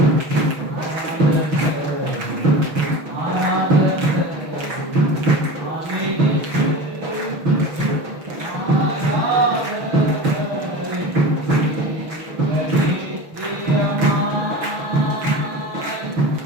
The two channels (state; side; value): late; left; 6.4 ms